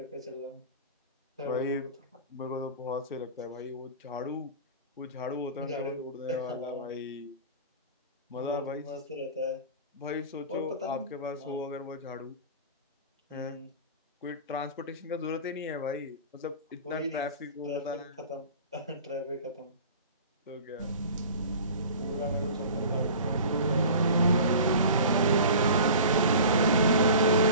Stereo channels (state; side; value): inverted; both; correlation -0.39